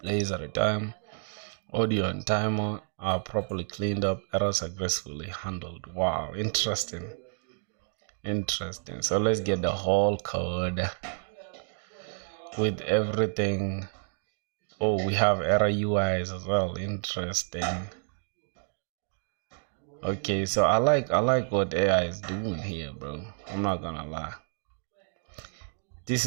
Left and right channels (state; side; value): silent; left; 57 dB below the other